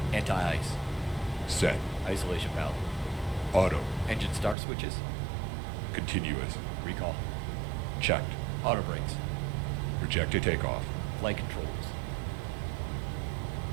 Anti-ice. Set. Isolation valve. Auto. Engine start switches. Continuous. Recall. Checked. Auto brakes. Rejected takeoff. Flight controls.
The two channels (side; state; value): left; drops out; at 4.5 s